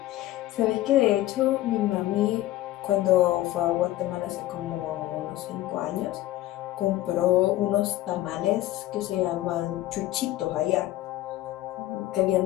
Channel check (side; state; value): right; quieter; 15.4 dB